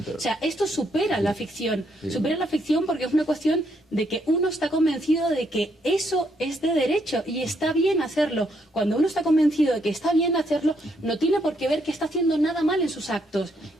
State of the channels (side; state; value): both; normal; correlation 0.74